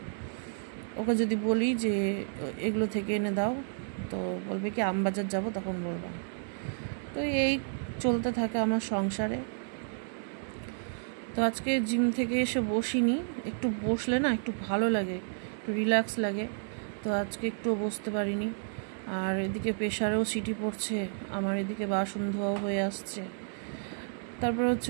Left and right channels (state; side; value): silent; left; 57 dB below the other